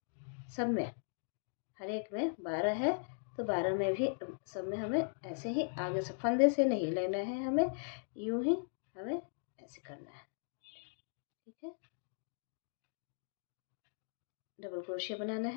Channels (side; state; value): right; silent; digital silence